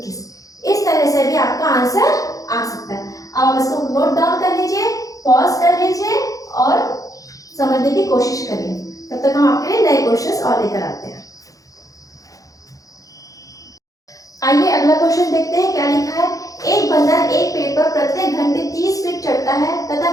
इस तरह से भी आपका आंसर आ सकता है। अब आप इसको नोट डाउन कर लीजिए, पॉज कर लीजिए और समझने की कोशिश करिए। तब तक हम आपके लिए नए क्वेश्चंस और लेकर आते हैं। आइए अगला क्वेश्चन देखते हैं क्या लिखा है। एक बंदर एक पेड़ पर प्रत्येक घंटे 30 फीट चढ़ता है तथा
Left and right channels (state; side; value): late; right; 0.17 ms